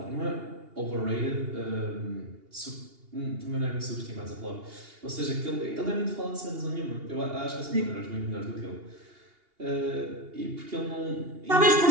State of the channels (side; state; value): left; late; 2.8 ms